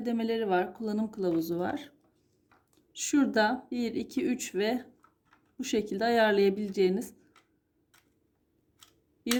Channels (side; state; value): both; identical; correlation 1.00